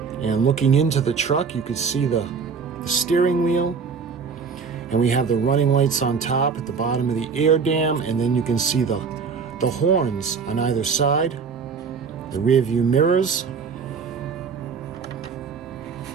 And looking into the truck, you can see the steering wheel. And we have the running lights on top at the bottom of the air dam. And then you can see the horns on either side. The rear view mirrors.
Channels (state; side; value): quieter; left; 5.6 dB